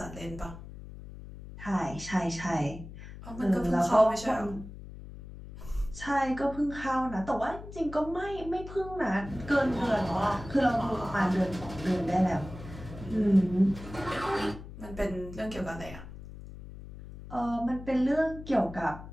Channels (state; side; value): noise; left; hum, 13 dB below the sound